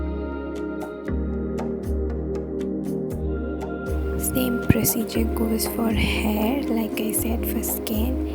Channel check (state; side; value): identical; both; correlation 1.00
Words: procedure goes for hair, like I said, for